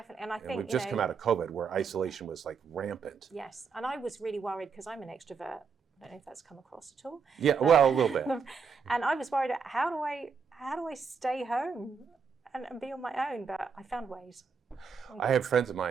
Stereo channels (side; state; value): left; quieter; 5.7 dB